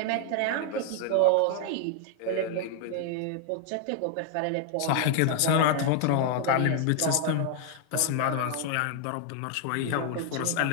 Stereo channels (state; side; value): different; both; correlation 0.00